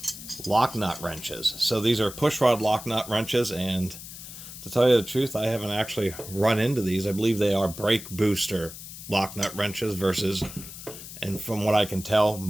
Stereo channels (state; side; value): noise; left; hiss, 13 dB below the sound